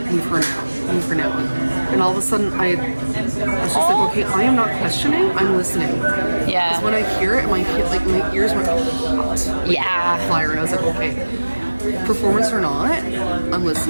now. And all of a sudden I was just like, okay, I am not questioning, I'm listening. Yeah. Because when I hear it, my ears went hot Yeah. fire, and I was like, okay. performance or not, I'm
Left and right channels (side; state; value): both; inverted; correlation -1.00